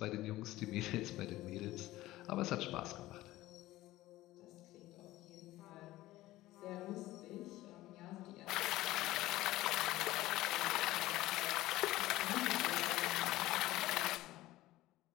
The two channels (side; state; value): right; quieter; 16.7 dB